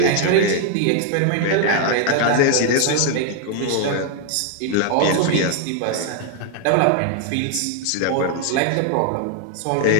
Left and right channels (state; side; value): different; both; correlation 0.00